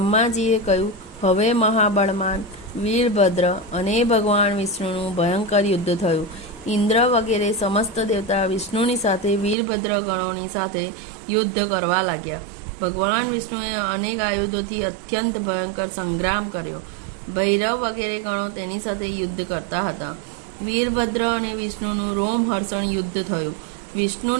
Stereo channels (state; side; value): drops out; left; at 9.6 s